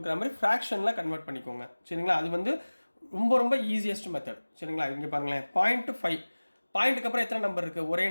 மாதிரி ஃப்ராக்ஷனில் கன்வெர்ட் பண்ணிக்கோங்க சரிங்களா. அது வந்து ரொம்ப ரொம்ப ஈஸியஸ்ட் மெத்தட் சரிங்களா. இங்கே பாருங்களேன் 0.5 பாயிண்ட்டுக்கு அப்புறம் எத்தனை நம்பர் இருக்குது, ஒரே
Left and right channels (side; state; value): both; inverted; correlation -1.00